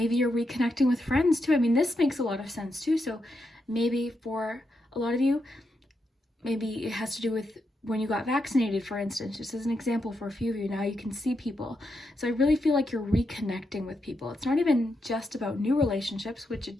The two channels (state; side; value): normal; both; correlation 0.84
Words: you're reconnecting with friends too. I mean, this makes a lot of sense too. So maybe for a lot of you, maybe it has to do with when you got vaccinated, for instance, just as an example for a few of you. Now you can see people. So I really feel like you're reconnecting with people. It's not even just about new relationships, which it